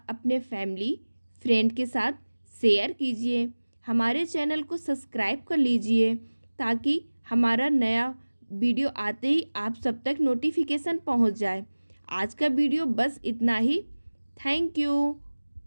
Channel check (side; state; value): both; inverted; correlation -1.00